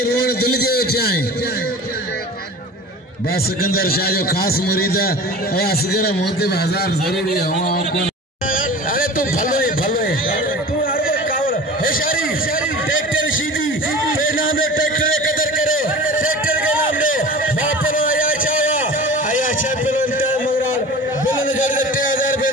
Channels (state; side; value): normal; both; correlation 0.38